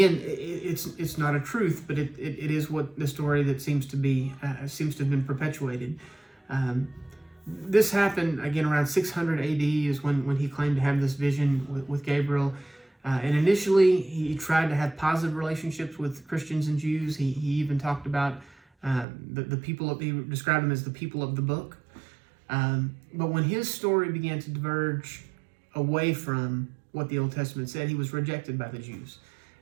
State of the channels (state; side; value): drops out; left; at 19.1 s